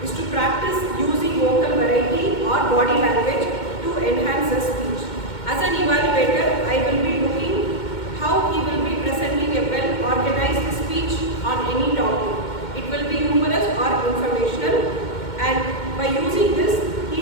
practice using vocal variety or body language to enhance the speech. As an evaluator, I will be looking how he will be presenting a well-organized speech on any topic. It will be humorous or informational, and by using this, he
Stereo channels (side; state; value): right; late; 2.2 ms